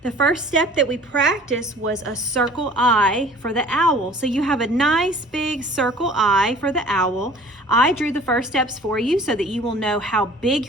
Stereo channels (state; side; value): normal; both; correlation 0.48